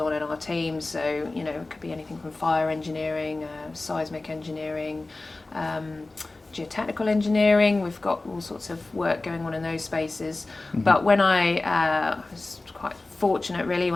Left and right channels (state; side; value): quieter; right; 3.2 dB